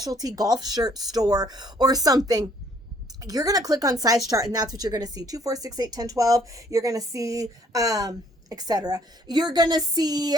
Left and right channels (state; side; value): normal; both; correlation 0.63